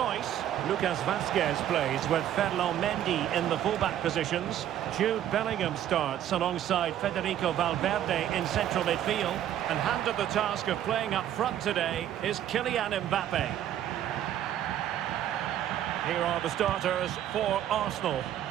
Lucas Vazquez plays with Ferland Mendy in the fullback positions. Jude Bellingham starts alongside Federico Valverde in central midfield. And handed the task of playing up front today is Kylian Mbappe. Here are the starters for Arsenal.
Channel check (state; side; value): quieter; left; 11.3 dB